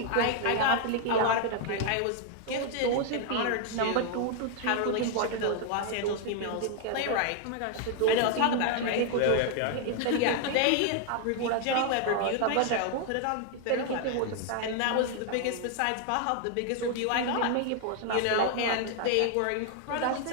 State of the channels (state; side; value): different; both; correlation 0.00